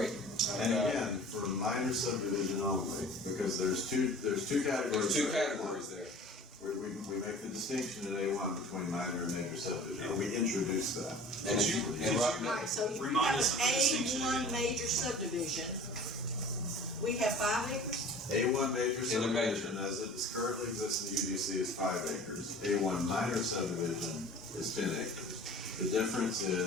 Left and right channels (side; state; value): both; normal; correlation 0.44